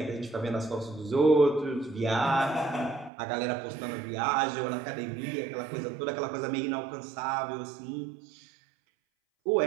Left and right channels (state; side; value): drops out; left; at 3.1 s